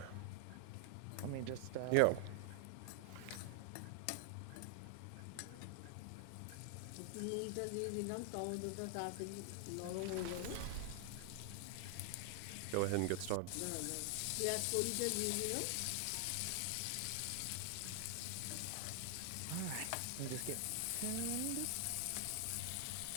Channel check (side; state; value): both; different; correlation 0.00